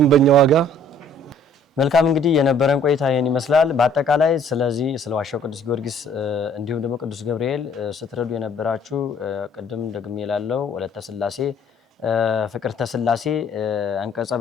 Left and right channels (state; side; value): normal; both; correlation 0.57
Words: ዋጋ። መልካም እንግዲህ የነበረን ቆይታ ይሄን ይመስላል። በአጠቃላይ ስለዚህ ስለ ዋሻው ቅዱስ ጊዮርጊስ እንዲሁም ደግሞ ቅዱስ ገብርኤል ስትረዱ የነበራችሁ ቅድም ደግሜ እላለሁ ወለተ ስላሴ፣ ፍቅርተ ስላሴ፣ አንቀጸ